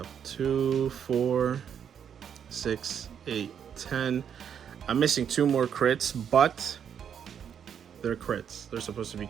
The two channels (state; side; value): quieter; left; 8.2 dB